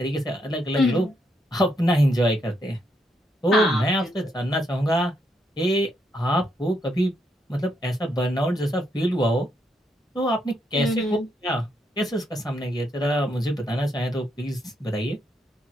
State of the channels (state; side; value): normal; both; correlation 0.77